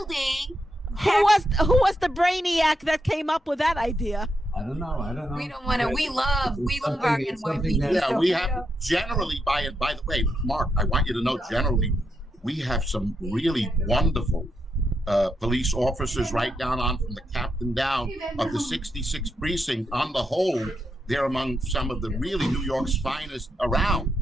Who was the brainiac that came up with that idea? I don't know. We don't want to. We love our NYPD. Yeah, we have generally, by the way, Mark, I want you to know, generally, we have some really wonderful police officers right down on from the captain down of the 66th precinct. On the whole, they're among some of the really New York's finest around,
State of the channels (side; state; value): both; normal; correlation 0.82